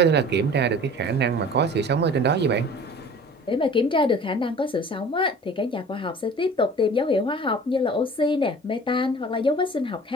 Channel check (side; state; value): both; normal; correlation 0.44